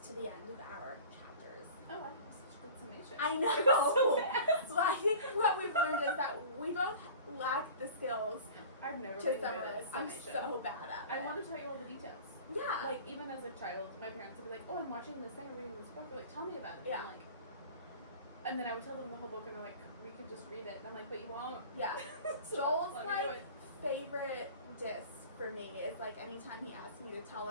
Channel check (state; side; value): inverted; both; correlation -0.40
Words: to the end of our chapters. Oh, wow, that was such a good summation. I know! It was so fast. So I think what we've learned is that we both lack the skills I've never to been good summarize. at I'm summation. so bad at it. I want to tell you all the details. Yeah. Like, even as a child, my parents would be like, oh, I'm watching this thing or reading this book. They're like, tell me about it. Yeah. And, like, and then I would tell them the whole book, and they're like, we could just read it. And I'm like, but you won't. Yeah. So Joel's let me do like it. favorite diss for me is like anytime he asks me to tell